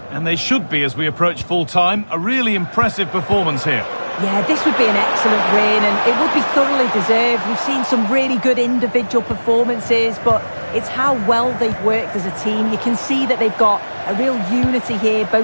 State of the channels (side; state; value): both; inverted; correlation -1.00